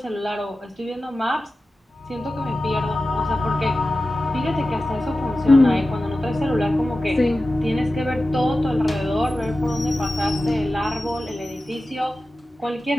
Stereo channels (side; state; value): both; normal; correlation 0.95